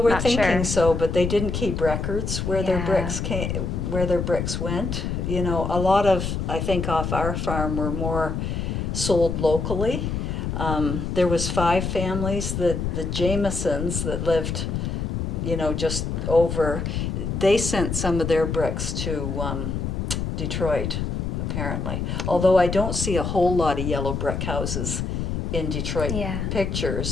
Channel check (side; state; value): left; noise; rumble, 2 dB below the sound